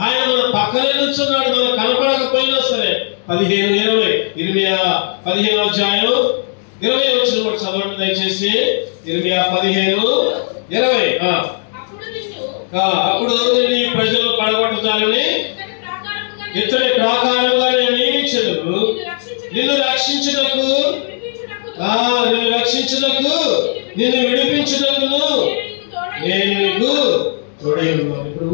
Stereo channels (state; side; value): silent; right; digital silence